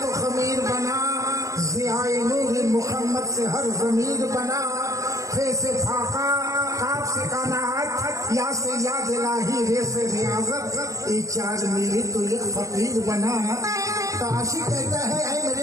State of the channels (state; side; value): late; left; 0.16 ms